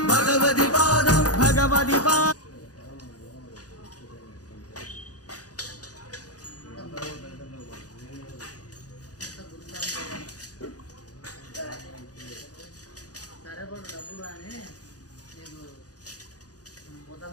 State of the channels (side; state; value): right; late; 0.67 ms